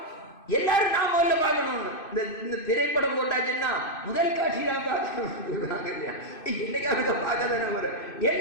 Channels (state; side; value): late; right; 2.6 ms